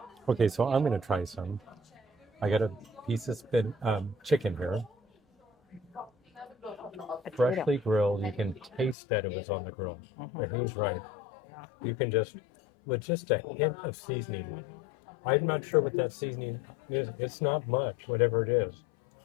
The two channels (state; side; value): drops out; right; at 9.0 s